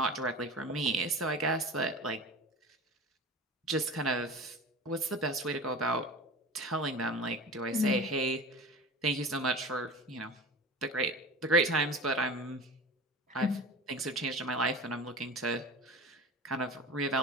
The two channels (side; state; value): both; normal; correlation 0.34